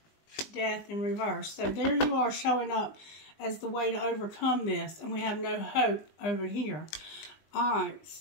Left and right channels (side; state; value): right; late; 20 ms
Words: Death in reverse. So there you are showing up as the way to overcome this. And we have no hope over here. Alright,